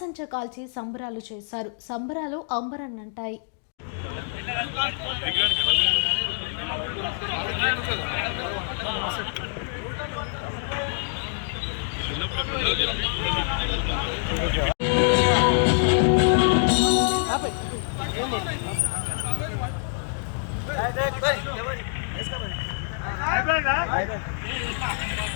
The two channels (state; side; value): silent; right; digital silence